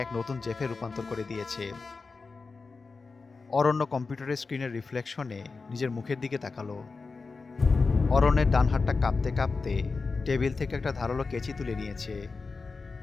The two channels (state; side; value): quieter; right; 4.3 dB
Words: এক নতুন জেফে রূপান্তর করে দিয়েছে। অরণ্য কম্পিউটারের স্ক্রিনের রিফ্লেকশনে নিজের মুখের দিকে তাকালো। অরণ্যের ডান হাতটা কাঁপতে কাঁপতে টেবিল থেকে একটা ধারালো কেচি তুলে নিয়েছে।